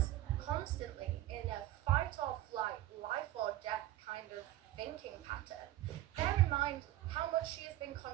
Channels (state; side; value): quieter; left; 14.9 dB